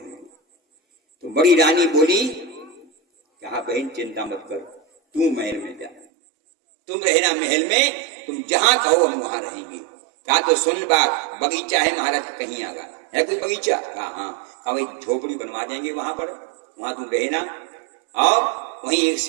तो बड़ी रानी बोली, कहा बहन चिंता मत कर, तू महल में जा, तुम रहना महल में, तुम जहां कहो हम वहां रहेंगे। कहा तो सुन बात, बगीचा है महाराज कहीं आगा, है कोई बगीचा? कहा हाँ। कहा भाई झोपड़ी बनवा देंगे वहां पर, वहां तुम रहना, और वहीं एक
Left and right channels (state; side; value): drops out; left; at 6.1 s